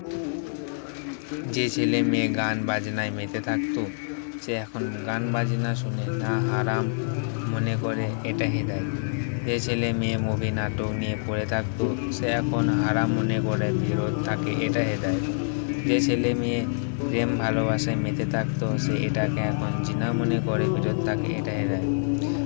যে ছেলে মেয়ে গান বাজনায় মেতে থাকতো, সে এখন গান বাজনা শুনে না হারাম মনে করে, এটা হেদায়েত। যে ছেলে মেয়ে মুভি নাটক নিয়ে পড়ে থাকতো, সে এখন হারাম মনে করে বিরত থাকে, এটা হেদায়েত। যে ছেলে মেয়ে প্রেম ভালোবাসায় মেতে থাকতো, সে এটাকে এখন জিনা মনে করে বিরত থাকে, এটা হেদায়েত।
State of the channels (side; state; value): right; silent; 58 dB below the other